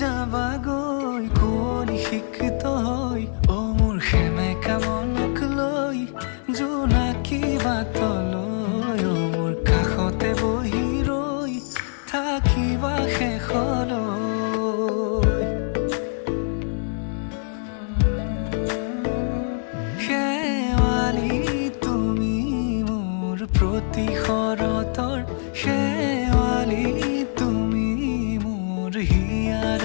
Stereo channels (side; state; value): right; silent; 63 dB below the other